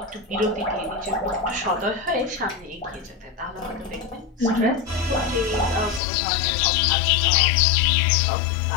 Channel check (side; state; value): right; drops out; at 6.0 s